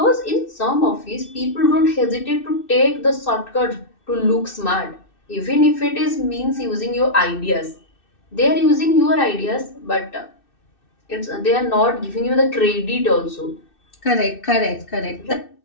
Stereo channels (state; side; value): late; right; 2.6 ms